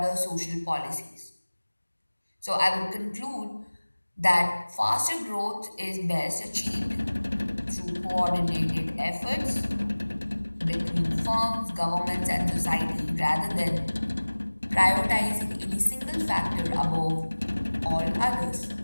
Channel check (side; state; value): both; inverted; correlation -1.00